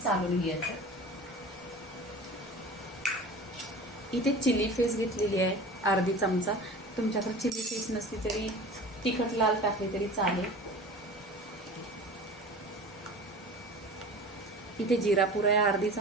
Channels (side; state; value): both; normal; correlation 0.38